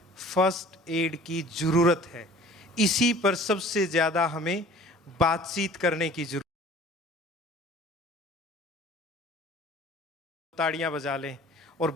फर्स्ट एड की जरूरत है। इसी पर सबसे ज्यादा हमें बातचीत करने की जरूरत। ताड़ियां बजा लें और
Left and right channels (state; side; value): normal; both; correlation 0.48